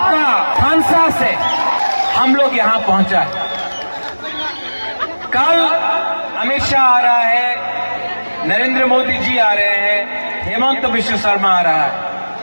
खानसा से हम लोग यहां पहुंचा है। कल अमित शाह आ रहा है, नरेंद्र मोदी जी आ रहे हैं, हेमंत बिश्व शर्मा आ रहा है।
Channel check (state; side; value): inverted; both; correlation -1.00